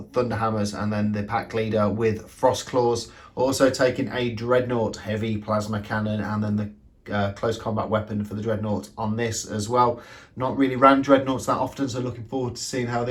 Thunderhammers, and then the pack leader with Frost Claws. Also taking a Dreadnought heavy plasma cannon, and then the close combat weapon for the Dreadnought on this as well. Not really ran Dreadnoughts that often, so looking forward to seeing how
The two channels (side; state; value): both; identical; correlation 1.00